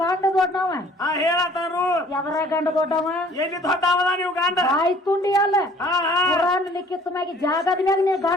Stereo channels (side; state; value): both; normal; correlation 0.54